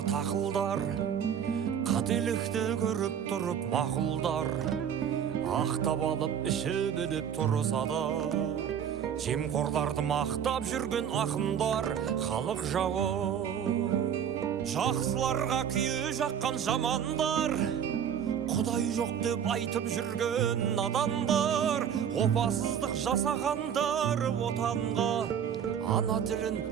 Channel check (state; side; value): quieter; left; 8.5 dB